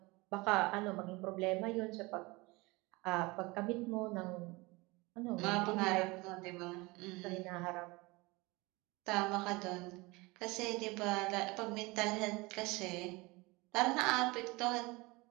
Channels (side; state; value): left; quieter; 23.9 dB